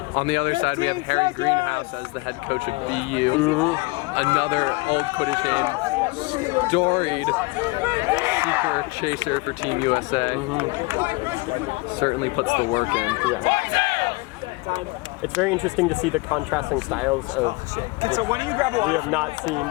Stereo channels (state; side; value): quieter; right; 24.8 dB